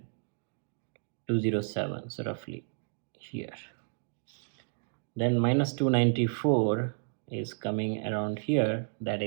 207, so roughly here. Then minus 294 is coming around here, that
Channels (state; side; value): silent; left; 57 dB below the other